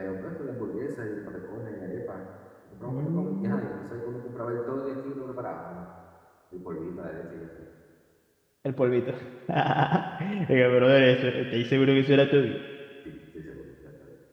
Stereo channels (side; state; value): both; identical; correlation 1.00